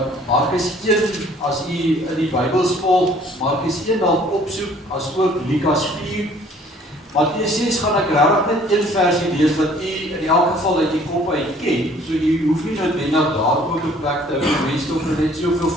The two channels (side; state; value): both; normal; correlation 0.56